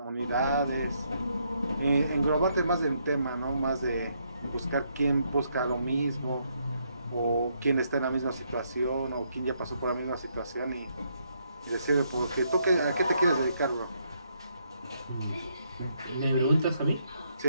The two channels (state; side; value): inverted; both; correlation -0.75